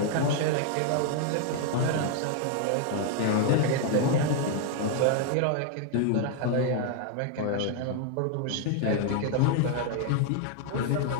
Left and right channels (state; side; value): different; both; correlation 0.00